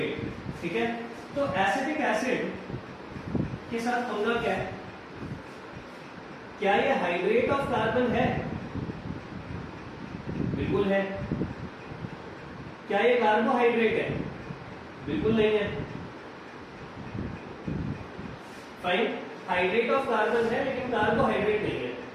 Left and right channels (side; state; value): both; identical; correlation 1.00